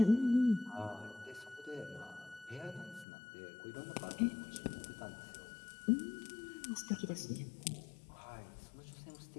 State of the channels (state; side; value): drops out; right; at 3.1 s